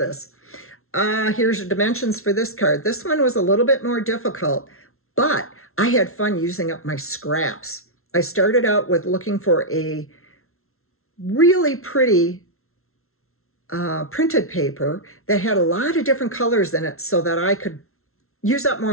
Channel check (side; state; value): right; late; 0.62 ms